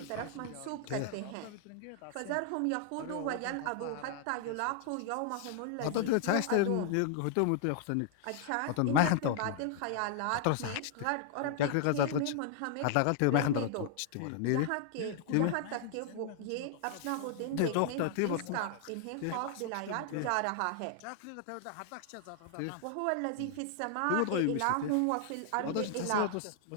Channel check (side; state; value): both; different; correlation 0.00